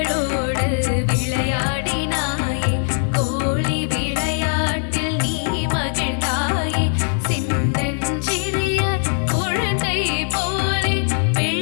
விளையாடினாயே கோழி விளையாட்டில் நீ மகிழ்ந்தாயே சின்னஞ்சிறிய குழந்தை போலே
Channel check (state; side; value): silent; right; 59 dB below the other